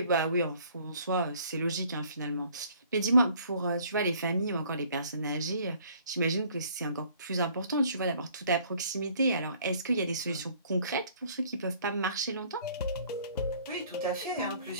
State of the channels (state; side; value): inverted; both; correlation -0.58